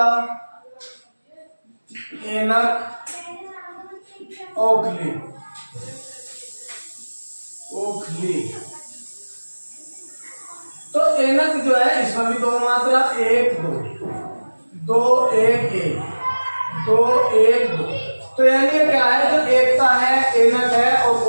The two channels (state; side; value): inverted; both; correlation -1.00